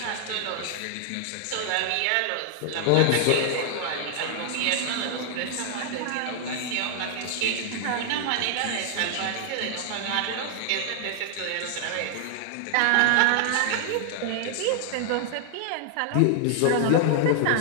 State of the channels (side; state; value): both; different; correlation 0.00